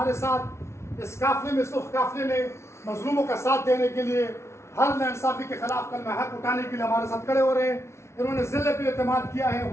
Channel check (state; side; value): late; right; 0.13 ms